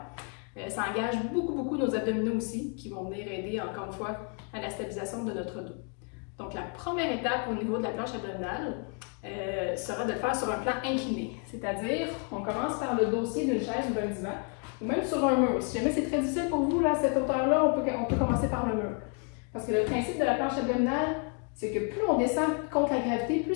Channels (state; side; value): quieter; right; 39.2 dB